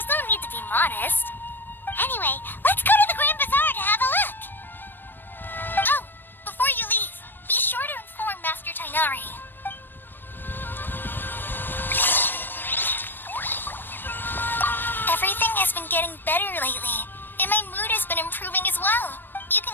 no need to be modest. Anyway, let's go to the Grand Bazaar to have a look. Oh, before you leave, be sure to inform Master Tainari. Everything has been getting better lately, and my mood has been improving as well. You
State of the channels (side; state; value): right; late; 0.094 ms